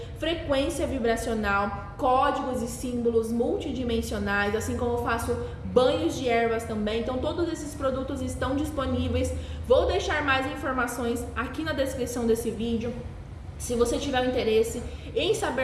frequência vibracional, códigos e símbolos multidimensionais, assim como faço banhos de ervas também. Então todos esses produtos estão disponíveis. Vou deixar mais informações aqui na descrição desse vídeo. Se você tiver interesse em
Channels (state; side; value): identical; both; correlation 1.00